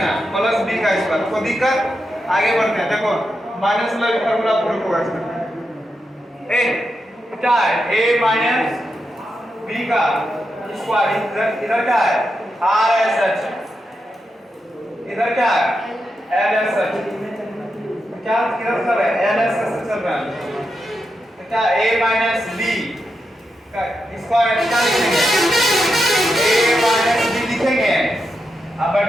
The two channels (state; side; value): normal; both; correlation 0.86